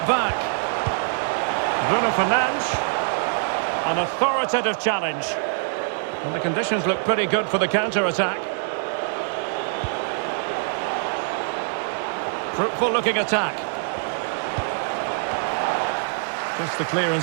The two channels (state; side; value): silent; left; digital silence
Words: back. Bruno Fernandes. An authoritative challenge. And the conditions look pretty good for the counter-attack. Fruitful looking attack. Just the